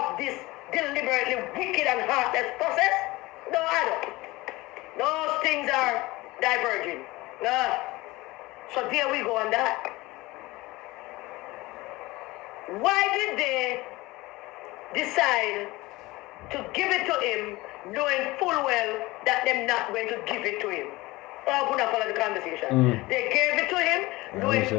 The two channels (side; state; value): right; quieter; 20.6 dB